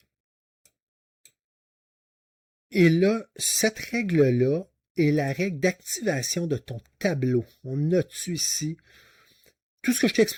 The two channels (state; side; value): identical; both; correlation 1.00